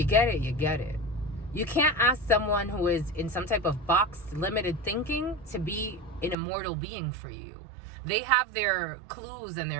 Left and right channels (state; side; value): drops out; left; at 6.4 s